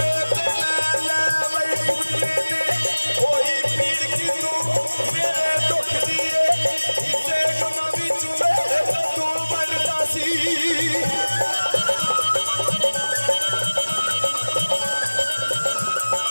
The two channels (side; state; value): both; inverted; correlation -1.00